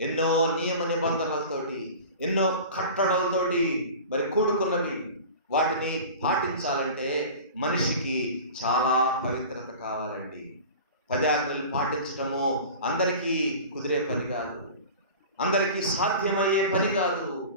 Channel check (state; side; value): inverted; both; correlation -0.37